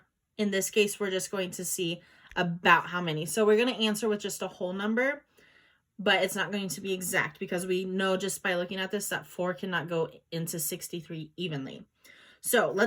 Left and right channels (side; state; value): both; identical; correlation 1.00